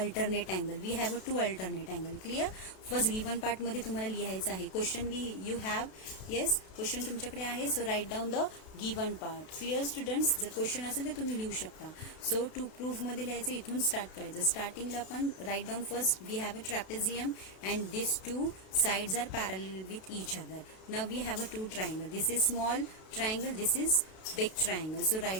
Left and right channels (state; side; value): late; right; 32 ms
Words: angle. We have a two alternate angle. Clear? First given part मध्ये तुम्हाला लिहायचं आहे. Question you have, yes, question तुमच्याकडे आहे. So write down the given part. Clear students? जर question असेल तर तुम्ही लिहू शकता. So to proof मध्ये लिहायचं, इथून स्टार्ट करायचं. स्टार्टिंगला आपण write down first we have a trapezium and these two sides are parallel with each other. Now we have a two triangle. This is small triangle, this is big triangle. So